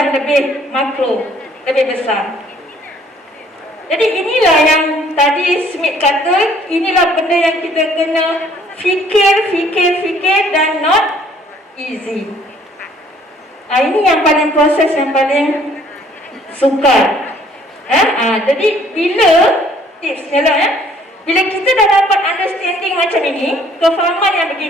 lebih makro, lebih besar. Jadi inilah yang tadi Smith kata, inilah benda yang kita kena fikir dan not easy. Ini yang paling proses yang paling sukar. Jadi bila tipsnya lah, bila kita dah dapat understanding macam ini, kefahaman yang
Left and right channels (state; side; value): normal; both; correlation 0.60